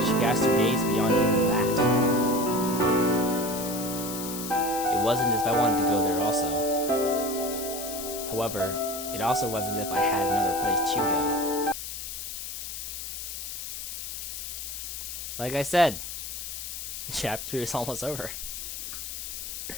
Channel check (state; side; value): noise; left; hiss, 7 dB below the sound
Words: She cast her gaze beyond even that. It wasn't as if I wanted to go there also. However, it also wasn't as if I had another place to go. Like I said, Chapter 3 is almost over.